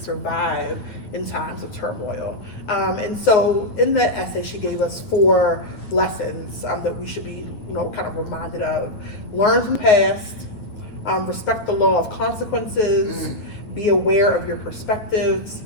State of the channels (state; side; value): late; right; 9.1 ms